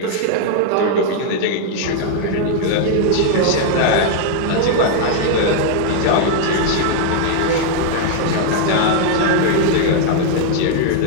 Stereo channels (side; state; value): both; different; correlation 0.00